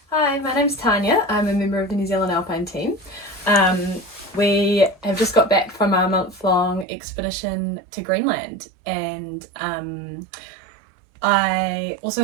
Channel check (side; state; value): left; drops out; at 6.9 s